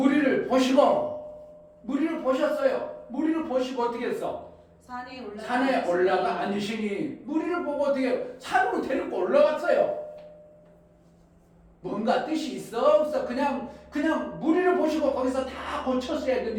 무리를 보셨어요. 무리를 보시고 어떻게 했어? 산에 올라가 앉으시니 무리를 보고 어떻게 산으로 데리고 올라갔어요. 뭔가 뜻이 있어 없어? 그냥 무리를 보시고 거기서 다 고쳤어야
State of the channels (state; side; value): identical; both; correlation 1.00